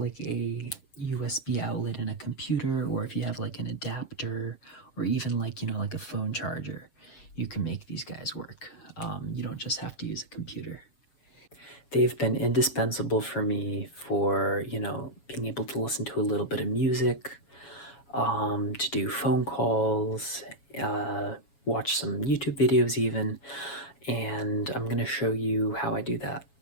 a USB outlet in a computer, or if you have like an adapter, or even like, like a phone charger, you can make these guys work. You don't just have to use a computer. They've been indispensable for me for, being able to listen to a little bit of music, to do phone calls, watch some YouTube videos even, and I'm going to show you how I do that.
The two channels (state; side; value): late; right; 7.2 ms